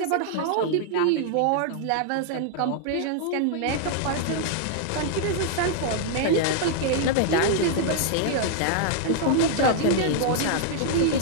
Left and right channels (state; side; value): different; both; correlation -0.01